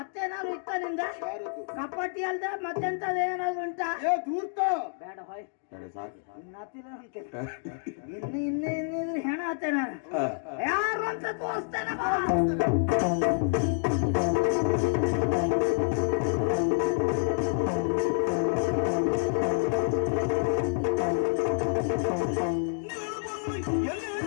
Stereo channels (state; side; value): silent; right; 59 dB below the other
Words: ಇತ್ತ ನಿಂದ? ಯಾರದ್ದು? ಕಪಟ್ಟಿ ಅಲ್ದ ಮತ್ತೆಂತದ ಏನಾದ್ರು ಉಂಟಾ? ಏ ಧೂರ್ತ! ಬೇಡ ಹೋಯ್, ಸರಿ, ಸಾಕು. ಇನ್ನಿದ್ರೆ ಹೆಣ ಆತೆ ನಾನು. ಯಾರು ಅಂತ ತೋರಿಸ್ತೇನೆ ಬಾ.